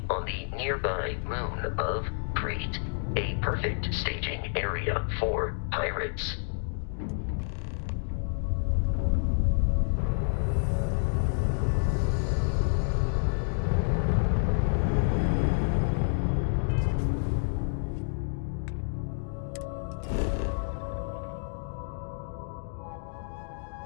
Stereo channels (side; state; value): right; silent; digital silence